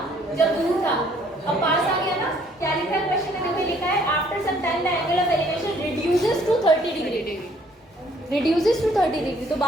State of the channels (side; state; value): both; normal; correlation 0.62